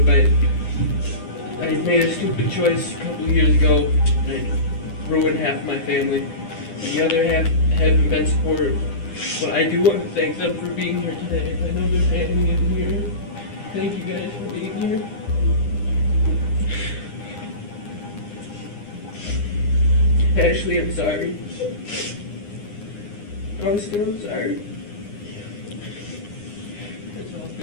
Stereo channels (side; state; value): right; late; 9.8 ms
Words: I made a stupid choice a couple of years ago. I ruined half of my family. The other half haven't been supportive. But I do want to thank them for being here today. I know their family isn't here. Thank you guys for being here. Ashley, I'm sorry. Austin, I'm sorry. That's all.